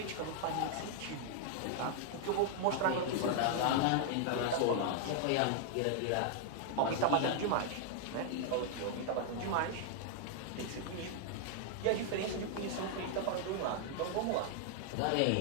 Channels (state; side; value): different; both; correlation 0.00